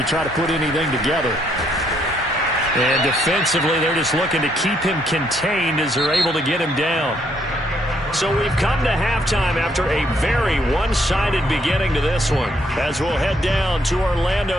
to try to put anything together. And defensively, they're just looking to keep him contained as they're able to get him down. So we've come to halftime after a very one-sided beginning to this one. As we'll head down to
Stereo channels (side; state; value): both; normal; correlation 0.71